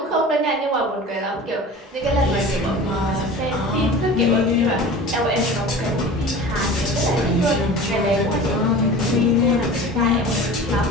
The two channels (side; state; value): both; normal; correlation 0.37